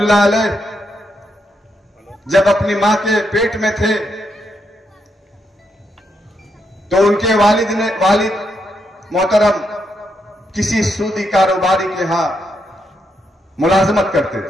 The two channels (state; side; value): normal; both; correlation 0.80